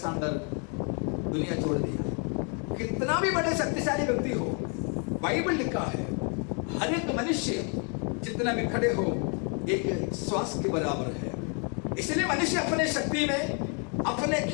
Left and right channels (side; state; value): right; quieter; 38.5 dB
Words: दुनिया छोड़ दिया। कितना भी बड़े शक्तिशाली व्यक्ति हो, बाइबल लिखा है हर एक मनुष्य जितना भी खड़े हो एक श्वास के बराबर है। इसलिए मनुष्य अपने शक्ति में, अपने